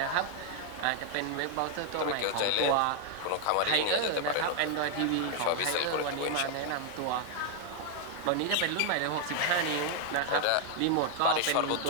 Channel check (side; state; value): both; different; correlation 0.00